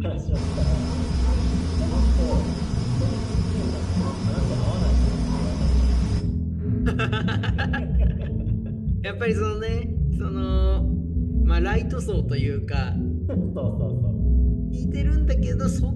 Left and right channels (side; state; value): both; identical; correlation 1.00